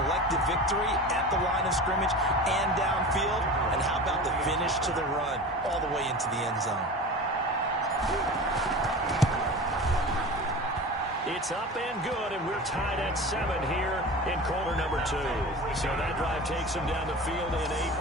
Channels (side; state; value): both; normal; correlation 0.33